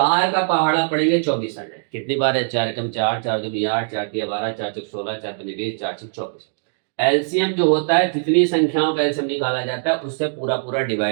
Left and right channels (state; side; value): silent; left; digital silence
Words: का पहाड़ा पड़ेंगे 24 आ जाए। कितनी बार है, 4 कम 4, 4 दूनी 8, 4 तिया 12, 4 चौक 16, 4 पंजे 20, 4 6 24। एलसीएम जो होता है, जितनी संख्याओं का एलसीएम निकाला जाता है उससे पूरा पूरा